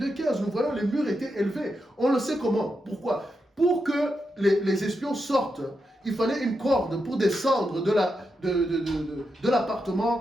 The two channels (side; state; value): both; normal; correlation 0.86